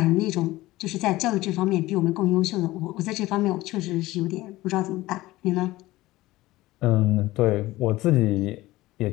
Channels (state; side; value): quieter; right; 18.1 dB